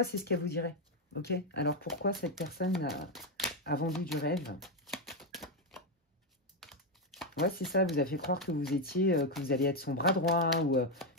c'est ce qu'elle vous dirait. Ok? Alors, pourquoi cette personne a vendu du rêve? Ouais, c'est ça. Vous a fait croire que vous étiez, que vous alliez être son bras droit ou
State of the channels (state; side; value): normal; both; correlation 0.06